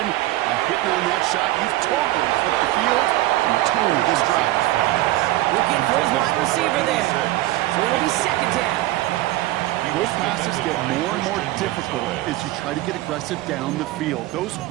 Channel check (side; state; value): left; quieter; 17.1 dB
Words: Hitting on that shot, you've totally flipped the field and the tone of this drive. Looking for his wide receiver there. So it'll be 2nd down. Those passes get more and more difficult as you try to get aggressive down the field. Those